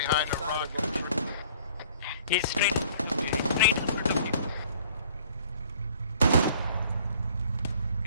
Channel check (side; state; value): both; inverted; correlation -0.55